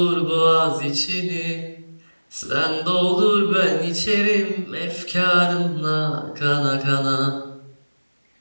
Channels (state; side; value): inverted; both; correlation -1.00